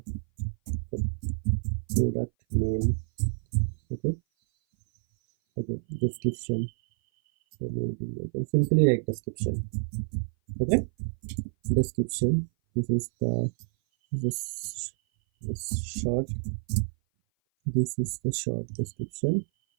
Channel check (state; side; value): silent; left; 57 dB below the other